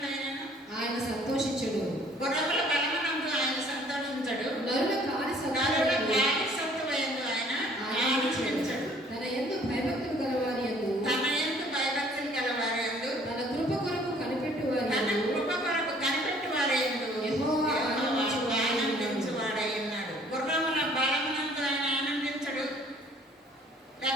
ఆయన సంతోషించడు. గుర్రముల బలమునందు ఆయన సంతోషించడు. నరుల కాని సత్తువయందు ఆయన ఆనందించడు. తన యందు భయభక్తులు గలవారి యందు తన యందు భయభక్తులు గలవారి యందు తన కృప కొరకు కనిపెట్టువారి తన యందు కృప కొరకు కనిపెట్టువారి యందు యెహోవా ఆనందించువాడై ఉన్నాడు. గుర్రముల బలమునందు ఆయన ఆనందించడు.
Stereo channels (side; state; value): both; normal; correlation 0.57